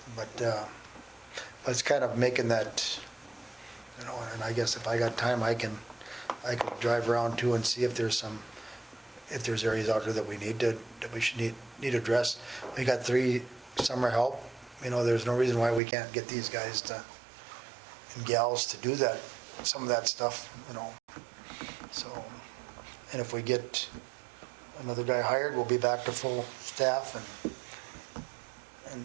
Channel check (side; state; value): left; drops out; at 15.8 s